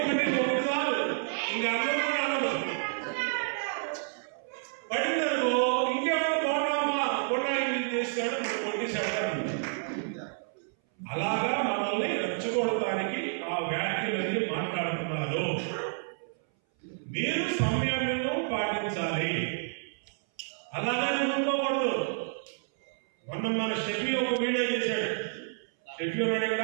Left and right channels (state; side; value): silent; left; 58 dB below the other